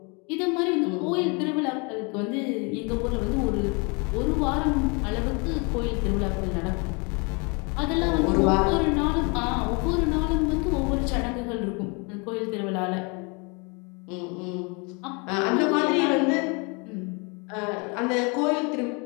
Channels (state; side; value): quieter; right; 31.7 dB